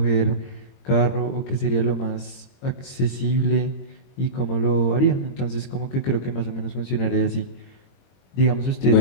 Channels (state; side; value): late; right; 22 ms